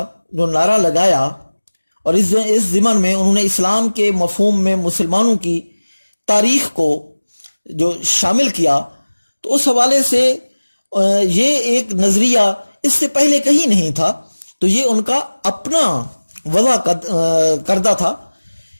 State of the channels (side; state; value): both; inverted; correlation -1.00